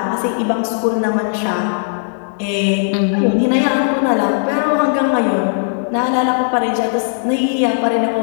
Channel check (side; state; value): right; silent; 58 dB below the other